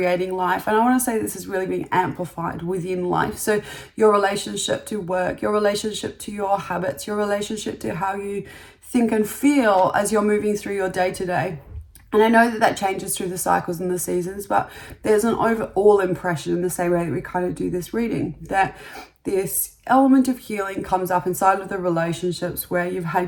life. And I want to say this is really being amplified within life. So your relationship to work, your relationship to your habits, your relationship to how you think and feel as you're moving through your day-to-day. And I know that changes through the cycles and the seasons, but there's an overall impression in the same way that we kind of do this reading, that this element of healing comes up inside of the relationships where you've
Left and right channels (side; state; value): both; identical; correlation 1.00